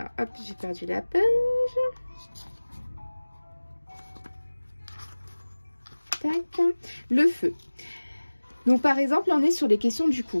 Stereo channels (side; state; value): both; inverted; correlation -1.00